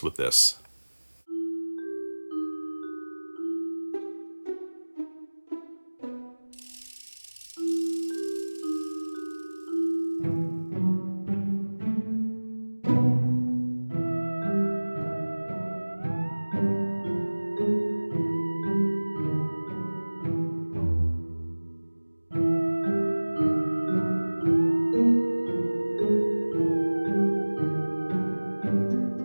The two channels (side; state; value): both; inverted; correlation -1.00